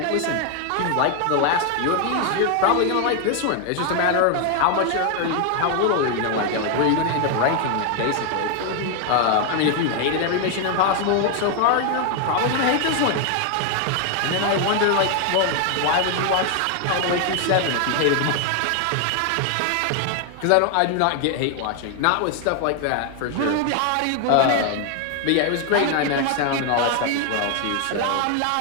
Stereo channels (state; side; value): different; both; correlation 0.00